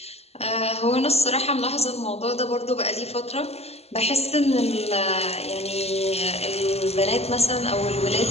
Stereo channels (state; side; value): late; right; 0.30 ms